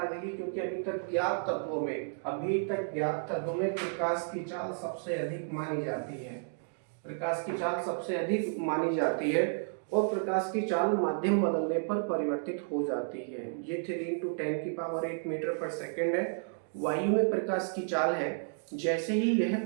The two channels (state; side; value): silent; left; digital silence